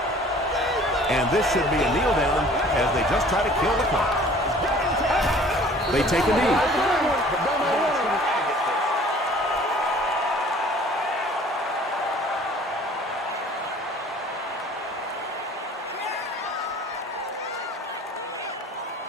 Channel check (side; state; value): both; normal; correlation 0.51